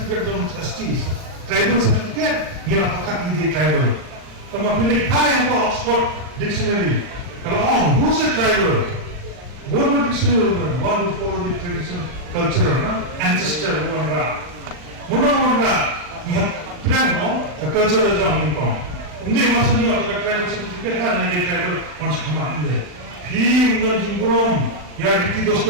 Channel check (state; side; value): late; left; 40 ms